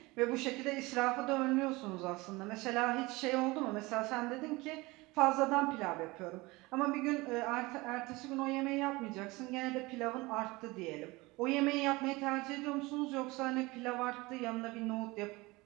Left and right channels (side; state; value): left; quieter; 22.4 dB